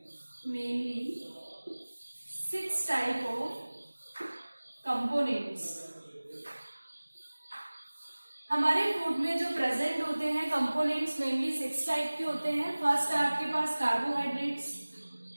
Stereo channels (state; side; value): inverted; both; correlation -1.00